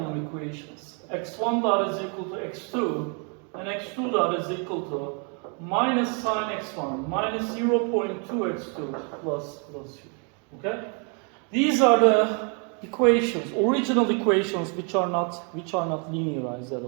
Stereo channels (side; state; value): left; quieter; 37.9 dB